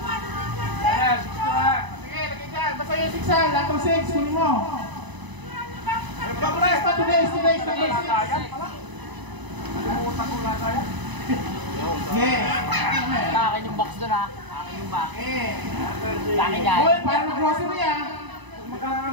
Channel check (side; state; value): left; late; 1.0 ms